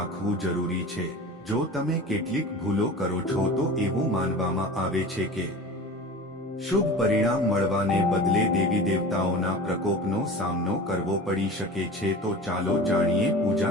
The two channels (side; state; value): both; normal; correlation 0.36